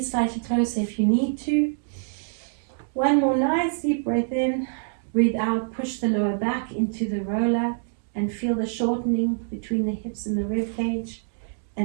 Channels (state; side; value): silent; left; digital silence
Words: slightly closer if you need to. 1 more nice deep breath in. Breathe out, push the lower back into the roller and feel the shortening between the hips and the rib cage.